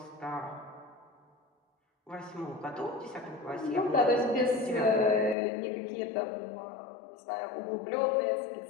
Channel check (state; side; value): drops out; right; at 5.4 s